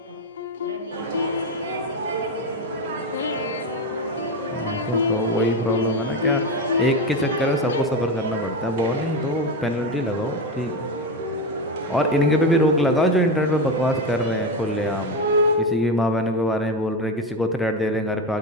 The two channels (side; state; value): both; normal; correlation 0.16